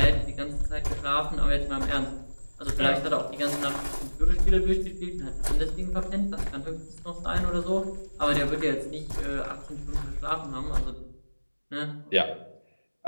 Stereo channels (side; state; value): both; inverted; correlation -1.00